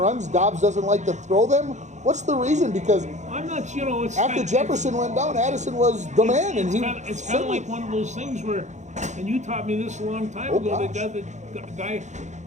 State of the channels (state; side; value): late; left; 0.34 ms